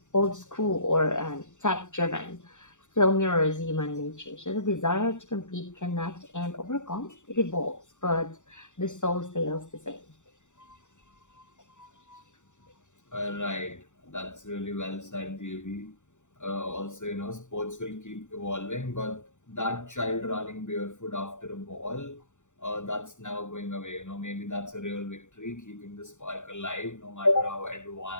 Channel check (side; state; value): right; late; 0.85 ms